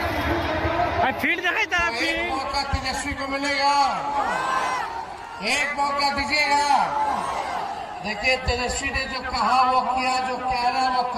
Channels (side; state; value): both; identical; correlation 1.00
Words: फील्ड दिखाई था। एक मौका तेजस्वी को मिलेगा, एक मौका दीजिएगा। देखिए तेजस्वी ने जो कहा वो किया, जो कह रहा वो